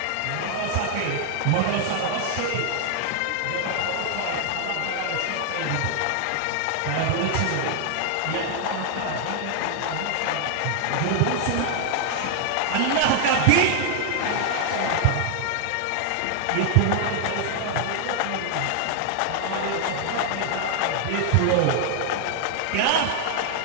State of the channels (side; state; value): both; different; correlation 0.00